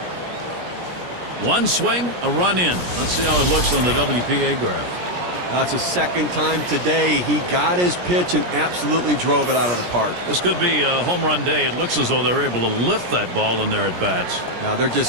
One swing, a run in. Let's see how it looks on the WPA graph. That's the second time today he got his pitch and absolutely drove it out of the park. This could be a home run day. It looks as though they're able to lift that ball in their at-bats. Now they're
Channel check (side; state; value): left; late; 17 ms